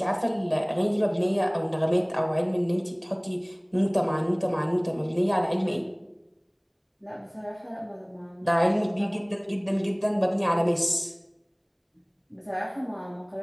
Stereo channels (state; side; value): identical; both; correlation 1.00